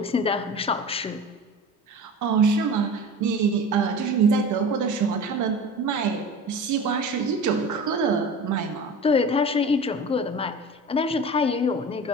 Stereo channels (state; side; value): normal; both; correlation 0.34